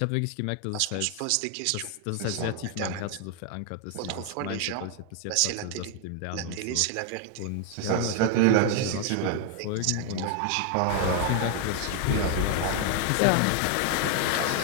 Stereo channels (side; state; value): both; different; correlation 0.00